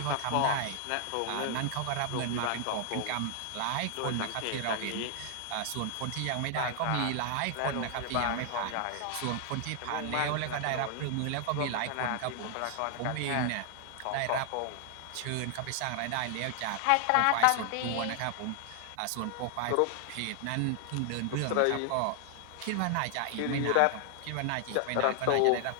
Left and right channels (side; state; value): both; different; correlation 0.00